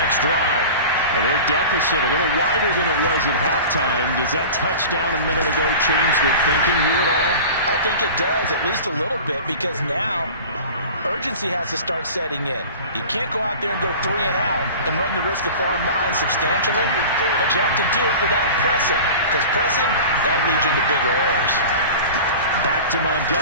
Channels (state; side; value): inverted; both; correlation -0.36